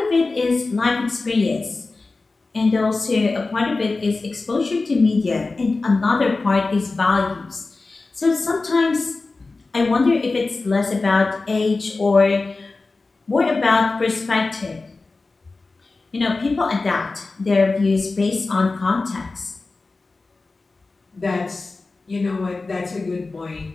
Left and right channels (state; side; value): quieter; right; 3.6 dB